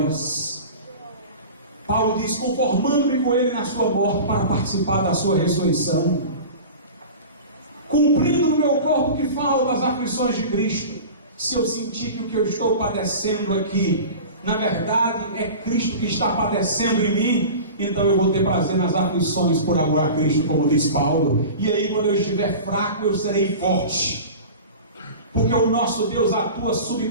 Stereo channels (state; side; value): inverted; both; correlation -0.34